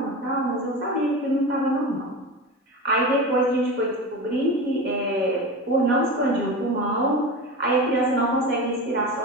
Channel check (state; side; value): normal; both; correlation 0.27